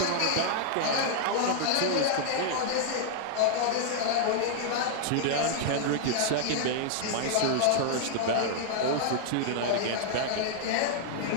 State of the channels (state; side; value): different; both; correlation -0.01